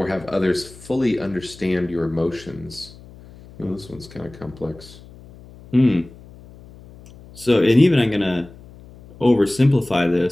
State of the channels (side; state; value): left; noise; hum, 21 dB below the sound